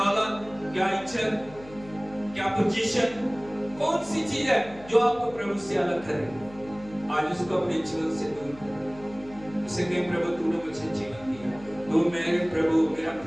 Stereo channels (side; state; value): left; noise; hum, 20 dB below the sound